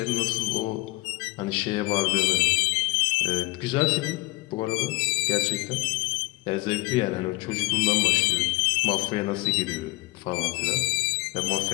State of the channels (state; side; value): quieter; right; 24.0 dB